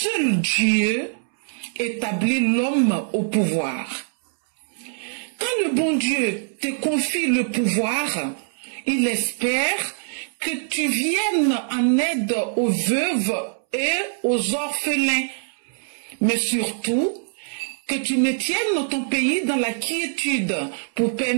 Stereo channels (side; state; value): left; silent; 63 dB below the other